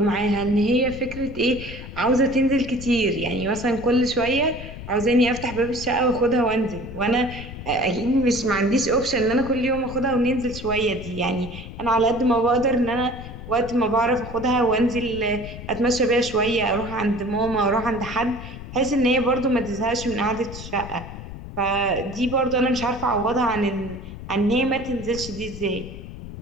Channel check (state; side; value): noise; left; rumble, 11 dB below the sound